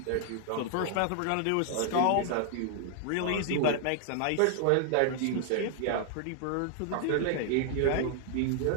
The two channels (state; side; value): different; both; correlation 0.00